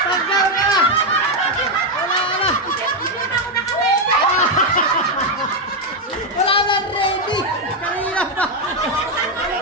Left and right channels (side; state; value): both; normal; correlation 0.04